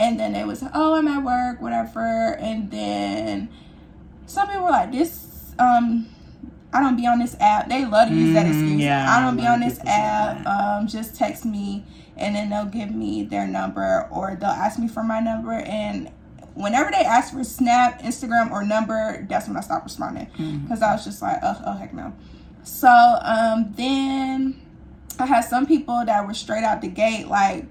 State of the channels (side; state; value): both; identical; correlation 1.00